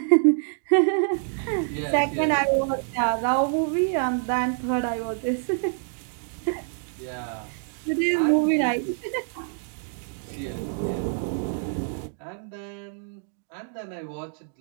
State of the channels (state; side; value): silent; left; 61 dB below the other